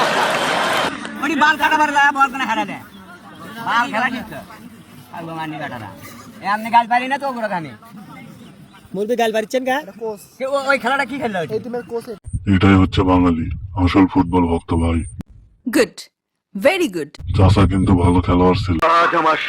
এটাই হচ্ছে বাঙালি, আসল ফুটবল ভক্ত ভাই। Good, very good. চাচা কিন্তু ভালো খেলোয়াড় ছিল। আজ আমার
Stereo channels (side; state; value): both; identical; correlation 1.00